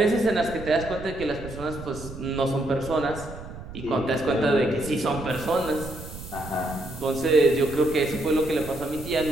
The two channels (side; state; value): right; noise; rumble, 12 dB below the sound